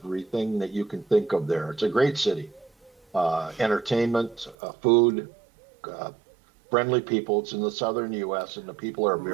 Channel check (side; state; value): left; drops out; at 4.5 s